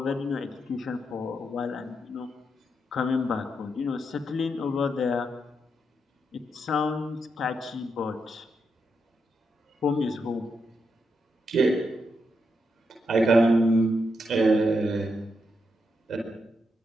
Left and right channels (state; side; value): normal; both; correlation 0.83